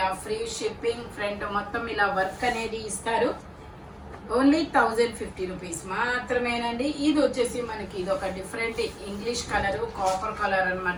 free shipping. Front మొత్తం ఇలా వర్క్ అనేది ఇస్తారు. ఓన్లీ 1050 రూపీస్ మాత్రమేనండి. ఇది వచ్చేసి మనకి ఇది ఒక different English colour, copper colour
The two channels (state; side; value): identical; both; correlation 1.00